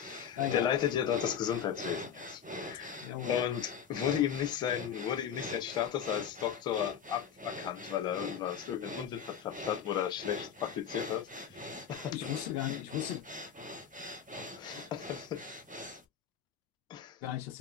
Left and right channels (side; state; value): right; quieter; 8.4 dB